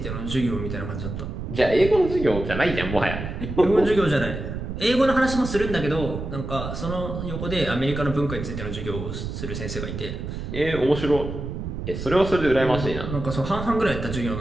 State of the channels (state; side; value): noise; right; rumble, 6 dB below the sound